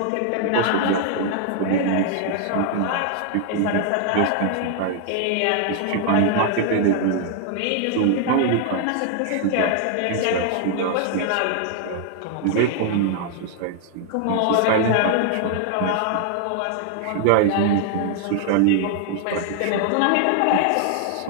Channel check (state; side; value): different; both; correlation 0.00